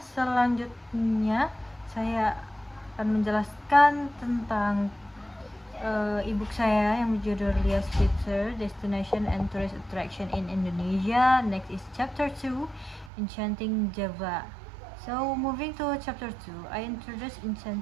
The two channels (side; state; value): left; drops out; at 13.1 s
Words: saya akan menjelaskan tentang e-book saya yang berjudul Lia Spitzer, Destination and Tourist Attraction in Indonesia. Next is Chapter 2, Enchanting Java. So, moving to Chapter 2, I introduce